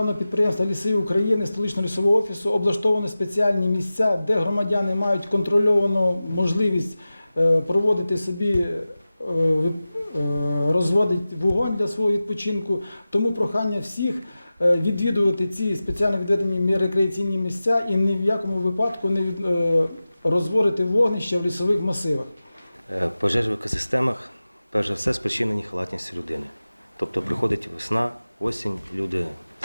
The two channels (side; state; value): both; inverted; correlation -0.95